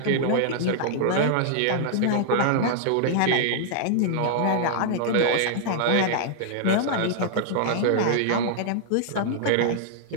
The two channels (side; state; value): both; different; correlation -0.01